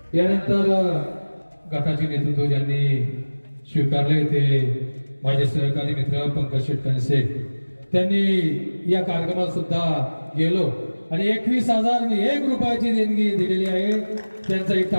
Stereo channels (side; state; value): both; inverted; correlation -1.00